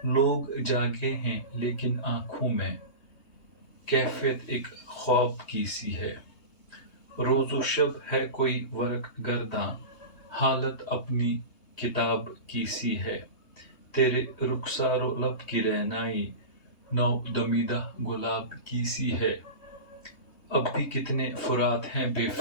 जागे हैं लेकिन आँखों में कैफ़ियत एक ख्वाब की सी है। रोज़ो शब है कोई वरक गर्दां, हालत अपनी किताब की सी है। तेरे रुखसारो लब की रहनाई, नौ दमीदा गुलाब की सी है। अब भी कितने फुरात हैं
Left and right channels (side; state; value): right; late; 3.2 ms